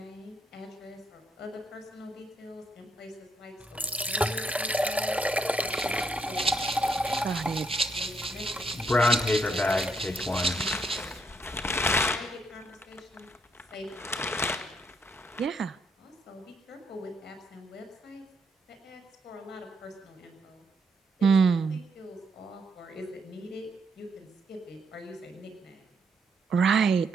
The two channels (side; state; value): both; normal; correlation 0.75